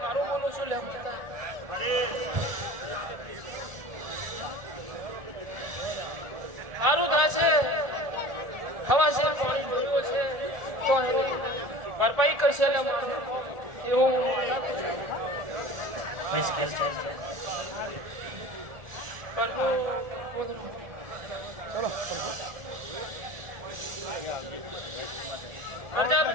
બોલું છું લે સારું થા છે હવા છે પાણી જોયું છે તો એની ભરપાઈ કરશે એટલે મારે એવું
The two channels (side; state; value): left; late; 1.4 ms